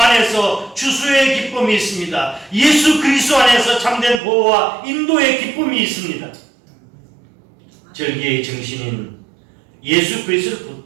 추수의 기쁨이 있습니다. 예수 그리스도 안에서 참된 보호와 인도의 기쁨이 있습니다. 절기의 정신인 예수 그리스도를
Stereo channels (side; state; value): left; drops out; at 4.2 s